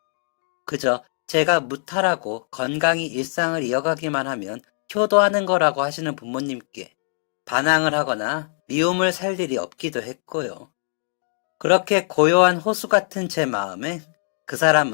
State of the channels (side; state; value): right; silent; digital silence